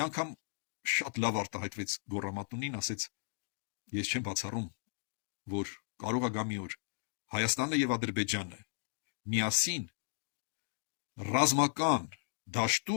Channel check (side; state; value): right; silent; digital silence